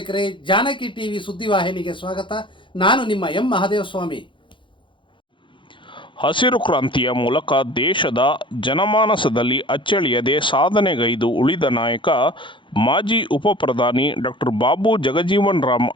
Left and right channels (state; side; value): late; right; 0.24 ms